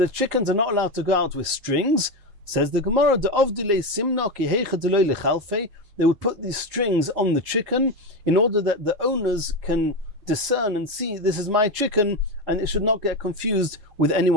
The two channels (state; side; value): late; left; 4.9 ms